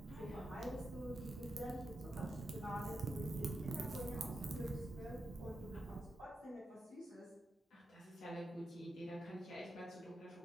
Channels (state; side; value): normal; both; correlation 0.87